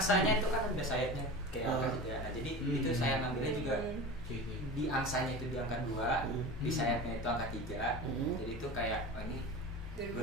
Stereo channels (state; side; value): normal; both; correlation 0.31